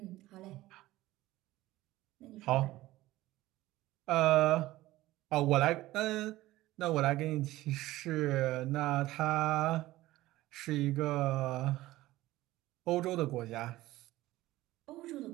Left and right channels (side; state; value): left; quieter; 16.9 dB